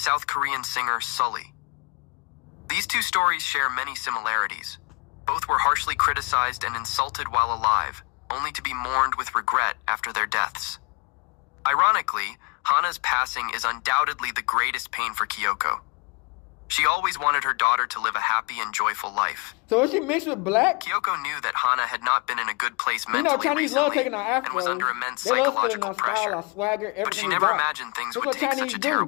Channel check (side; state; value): right; quieter; 30.3 dB